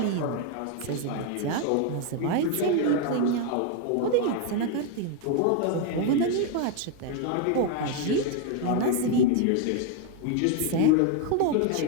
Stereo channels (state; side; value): different; both; correlation 0.01